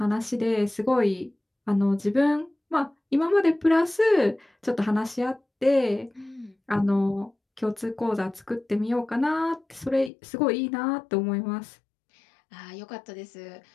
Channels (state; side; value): drops out; right; at 10.1 s